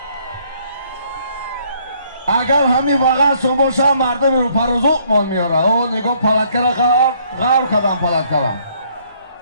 اگر همین واقعا سوموشا مردم رو پروزوق من میاره او نگاه پلکه را غار کدام پلکه را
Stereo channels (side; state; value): both; inverted; correlation -0.65